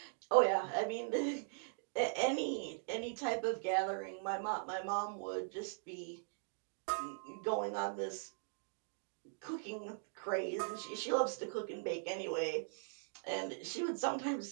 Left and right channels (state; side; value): silent; left; digital silence